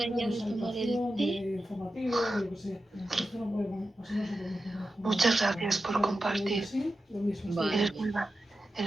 de informativo, de lo que sea. Esto no podemos, así no se puede. Muchas gracias por compartir. Vale.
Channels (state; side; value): normal; both; correlation 0.91